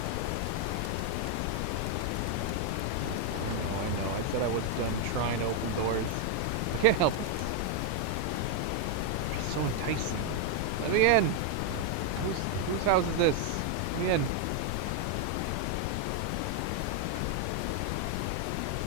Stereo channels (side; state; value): both; different; correlation 0.00